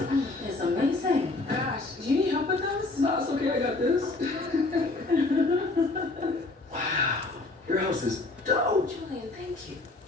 It's amazing. Gosh, do you need help with those? No, it's okay. I got this. Wow. Your house is dope. Julian, thank you.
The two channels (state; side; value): quieter; right; 3.2 dB